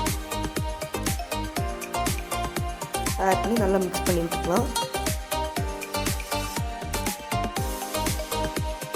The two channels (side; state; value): both; identical; correlation 1.00